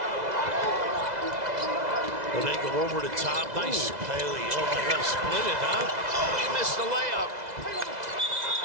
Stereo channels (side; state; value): left; late; 2.0 ms